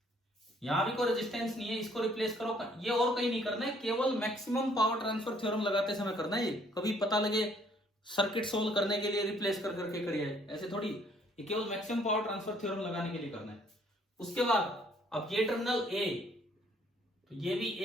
यहां भी कोई रेजिस्टेंस नहीं है, इसको रिप्लेस करो। ये और कहीं नहीं करना है, केवल मैक्सिमम पावर ट्रांसफर थ्योरम लगाते समय करना है। ये कभी पता लगे सर्किट सोल्व करने के लिए रिप्लेस कर करके करिए, ऐसे थोड़ी। ये केवल मैक्सिमम पावर ट्रांसफर थ्योरम लगाने के लिए करना है। उसके बाद अब ये टर्मिनल ए, तो ये भी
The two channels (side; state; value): both; normal; correlation 0.63